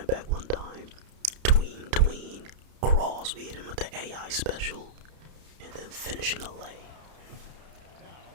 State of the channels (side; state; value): left; late; 31 ms